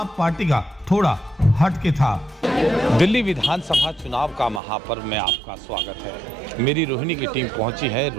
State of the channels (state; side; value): drops out; left; at 4.6 s